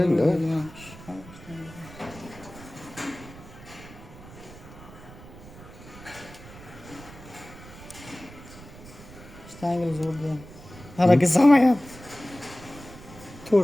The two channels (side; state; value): right; noise; rumble, 17 dB below the sound